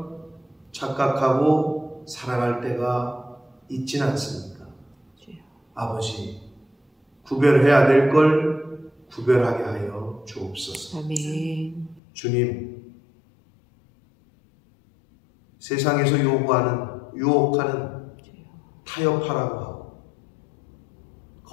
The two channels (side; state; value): right; drops out; at 12.0 s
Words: 착각하고 살아갈 때가 있진 않습니까? 아버지, 구별해야 될 걸 구별하게 하여 주옵소서. 아멘. 주님, 세상에서 유혹하는 타협하라고 하고